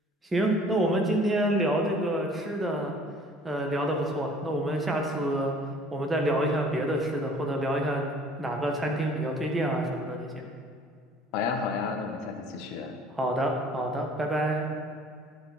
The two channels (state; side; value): normal; both; correlation 0.53